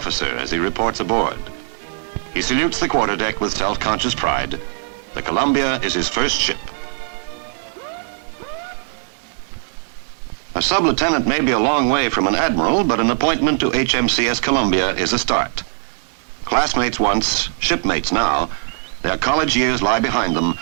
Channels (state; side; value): silent; left; digital silence